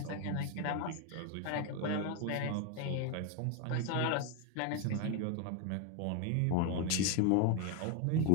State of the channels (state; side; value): different; both; correlation 0.01